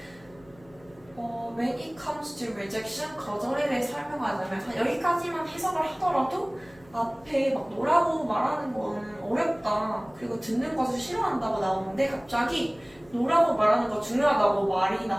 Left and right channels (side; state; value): left; noise; hum, 26 dB below the sound